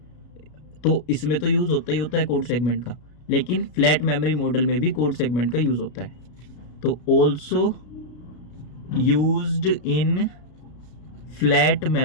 तो इसमें तो यूज़ होता ही होता है कोड सेगमेंट का, लेकिन फ्लैट मेमोरी मॉडल में भी कोड सेगमेंट का यूज़ होता है। तो also used in flat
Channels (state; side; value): late; right; 33 ms